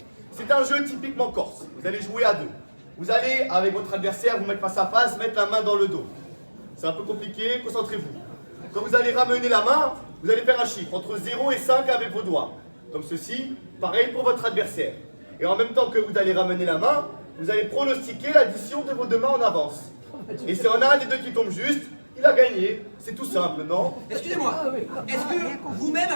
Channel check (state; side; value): inverted; both; correlation -1.00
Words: C'est un jeu typiquement corse. Vous allez jouer à deux. Vous allez, avec votre adversaire, vous mettre face à face, mettre la main dans le dos. C'est un peu compliqué, concentrez-vous. Quand vous allez ramener la main, vous allez faire un chiffre entre 0 et 5 avec vos doigts. Comme ceci, pareil pour votre adversaire. Et en même temps que vous allez ramener la main, vous allez pronostiquer l'addition de vos deux mains en avance. Et si on a un des deux qui tombe juste, il a gagné. C'est tout simple, non? Excusez-moi, est-ce que vous-même